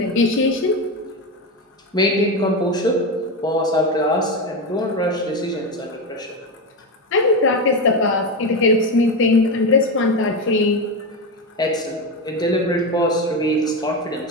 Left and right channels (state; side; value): normal; both; correlation 0.16